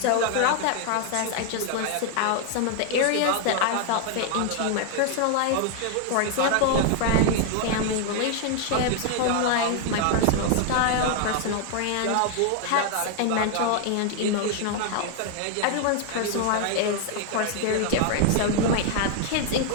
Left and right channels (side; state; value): both; different; correlation 0.00